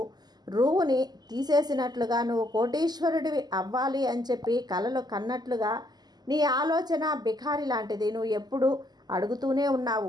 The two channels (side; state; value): left; late; 0.20 ms